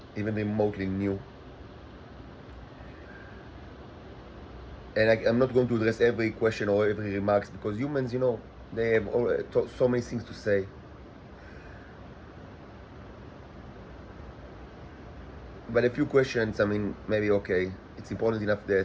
even remotely new. And I'm not going to address every question or every remarks because humans, they have so many things to say. But a few questions, maybe okay. It's important enough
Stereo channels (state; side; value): identical; both; correlation 1.00